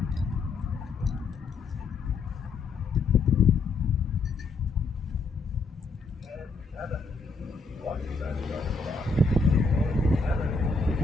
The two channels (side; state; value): right; quieter; 4.0 dB